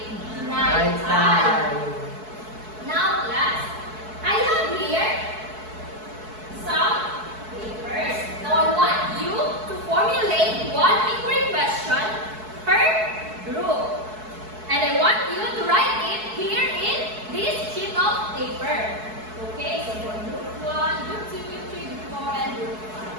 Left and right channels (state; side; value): late; left; 4.6 ms